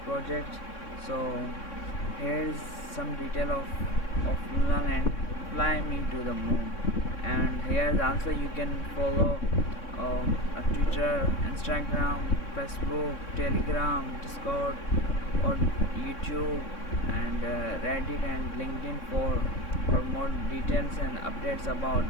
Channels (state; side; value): late; right; 3.6 ms